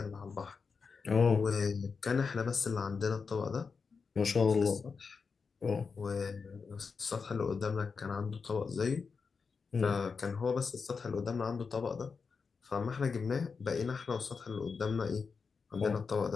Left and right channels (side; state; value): right; quieter; 5.2 dB